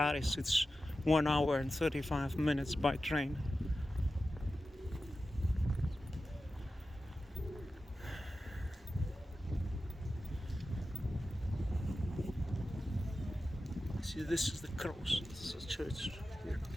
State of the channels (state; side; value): normal; both; correlation 0.93